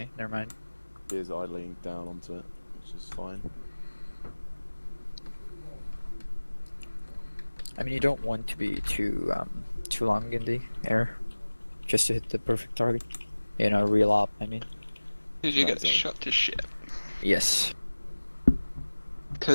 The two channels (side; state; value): both; inverted; correlation -1.00